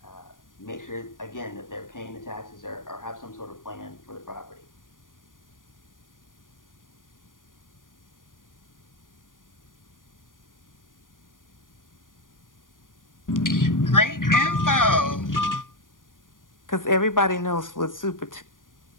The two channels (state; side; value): late; right; 0.89 ms